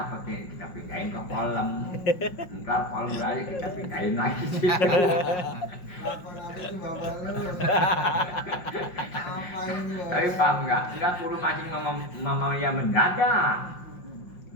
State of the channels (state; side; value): late; right; 5.6 ms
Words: nih, kita pindahin ke kolam. Ntar kolam aja kita pindahin lagi. Apa itu bapak lu? Apain lu? Tapi paham nggak perlu mancing mama yang mendadak.